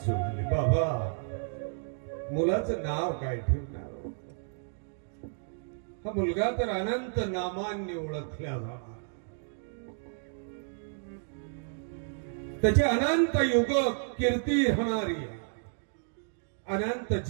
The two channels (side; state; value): left; silent; digital silence